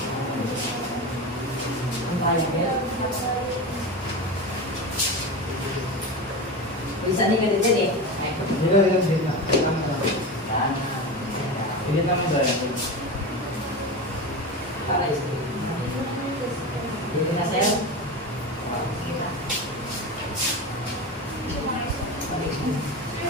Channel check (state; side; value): normal; both; correlation 0.24